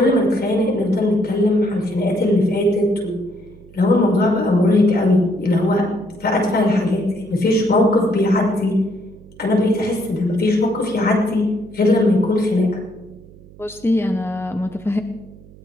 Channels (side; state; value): right; noise; hum, 22 dB below the sound